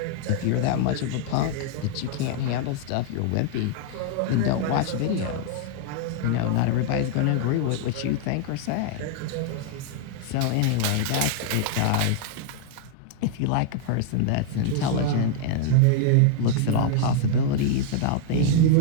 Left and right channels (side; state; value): both; different; correlation -0.01